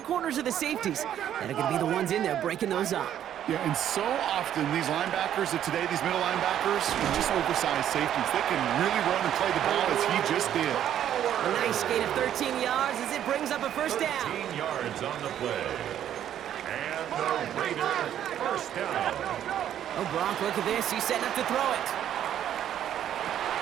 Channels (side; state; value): left; quieter; 10.6 dB